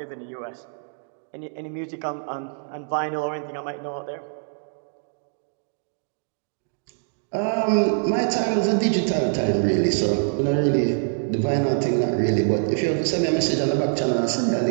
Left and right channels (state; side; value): silent; left; digital silence